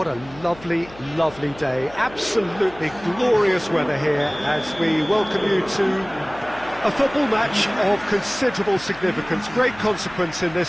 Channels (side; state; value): left; noise; hum, 20 dB below the sound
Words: a lovely, lovely day. Absolutely glorious weather here as we welcome you to a football match of considerable significance, great consequence in